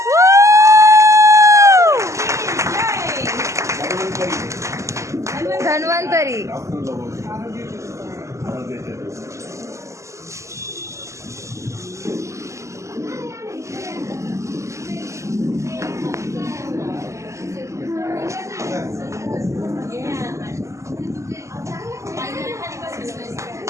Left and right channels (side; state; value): left; late; 0.14 ms